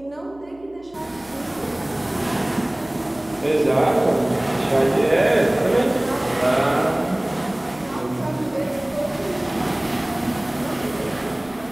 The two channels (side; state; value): right; noise; hum, 26 dB below the sound